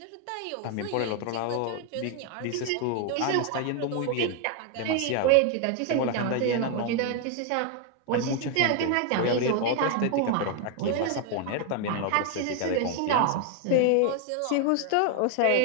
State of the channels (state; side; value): different; both; correlation 0.01